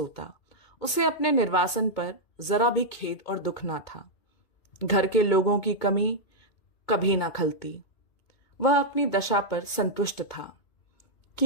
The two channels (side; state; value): right; late; 2.5 ms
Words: उसे अपने निर्वासन पर जरा भी खेद और दुख ना था। घर के लोगों की कमी कभी ना खलती। वह अपनी दशा पर संतुष्ट था।